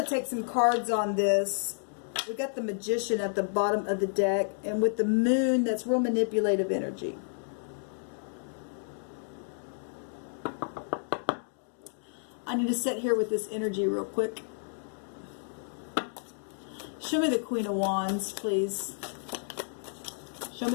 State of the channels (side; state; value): right; silent; digital silence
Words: to take some cards on this. We got the Magician at the bottom of the deck, and with the Moon, that's real manipulative energy. I need to sit here with this energy real quick. Show me the Queen of Wands, please. Show